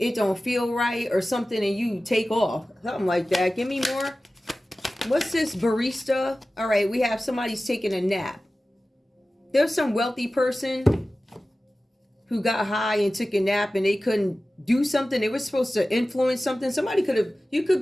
don't feel right or something and you take off. Something like that. Give me more. What's this? Barista. All right, we have somebody's taking a nap. There's some wealthy person who got high and took a nap and they couldn't do something. They were supposed to influence something. You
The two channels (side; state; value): both; normal; correlation 0.96